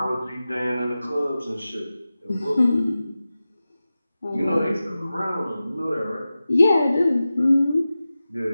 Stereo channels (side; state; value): both; inverted; correlation -0.95